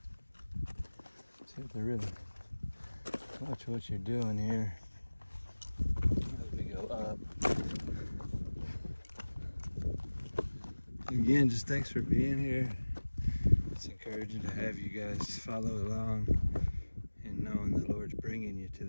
So you have to really watch what you're doing here as we go up. Again, just thanks for being here. It's encouraging to have you guys follow along and knowing the Lord's bringing you to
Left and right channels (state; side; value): inverted; both; correlation -1.00